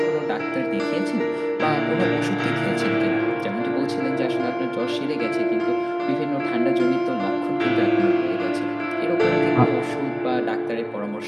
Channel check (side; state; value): both; identical; correlation 1.00